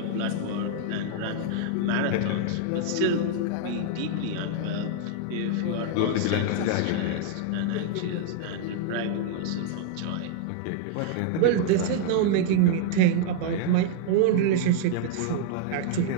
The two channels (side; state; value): both; different; correlation 0.00